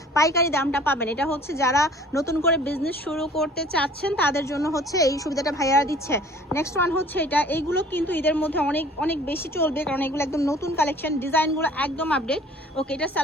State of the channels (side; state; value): both; normal; correlation 0.50